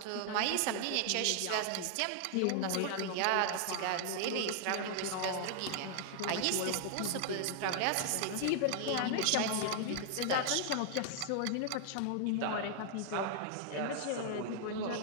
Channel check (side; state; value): both; different; correlation 0.00